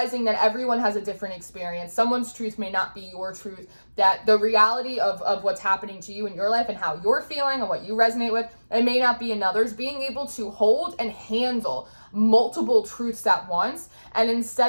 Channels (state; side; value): inverted; both; correlation -1.00